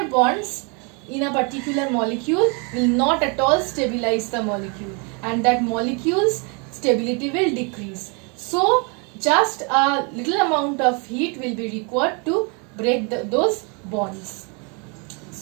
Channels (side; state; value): left; quieter; 34.0 dB